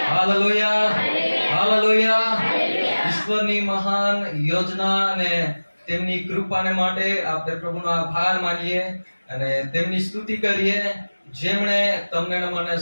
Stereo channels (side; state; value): both; inverted; correlation -1.00